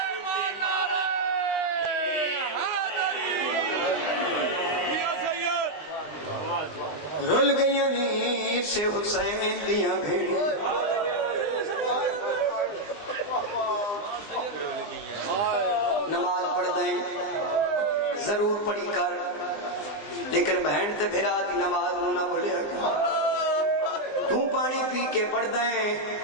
رل گئی نیت سے حسین دیاں بھیڑی نماز پڑھ دیں ضرور پڑھی کر لیکن بہن تے بھیرا دی نماز نہ بھولیا تو پانی پی کے پڑھ دیں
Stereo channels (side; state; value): right; late; 20 ms